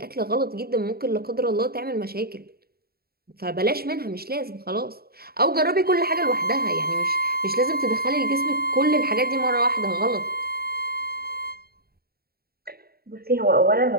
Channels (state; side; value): late; left; 0.45 ms